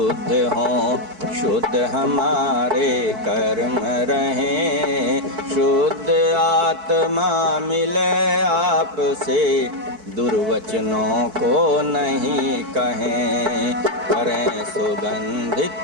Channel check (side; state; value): left; late; 4.6 ms